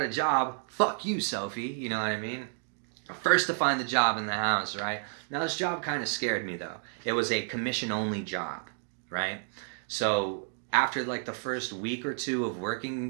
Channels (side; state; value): left; silent; 57 dB below the other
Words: a job. Fuck you, Sophie. You know what I mean? First to find the job in the house, right? Now this job kind of scared me though. It was a commission only job, right? So after like the first week or two of